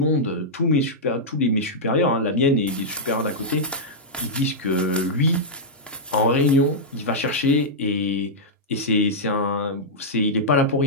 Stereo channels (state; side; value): normal; both; correlation -0.09